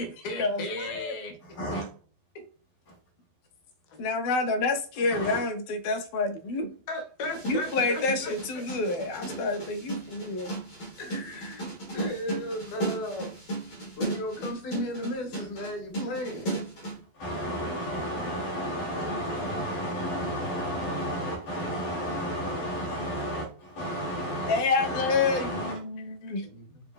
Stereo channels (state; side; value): late; right; 12 ms